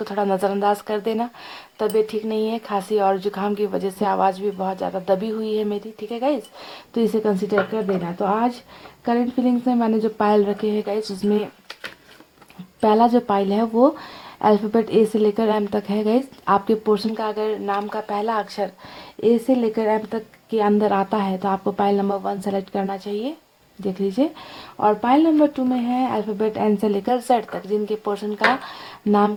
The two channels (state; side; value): identical; both; correlation 1.00